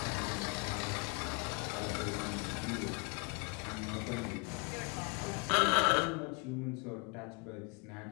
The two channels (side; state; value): right; quieter; 31.9 dB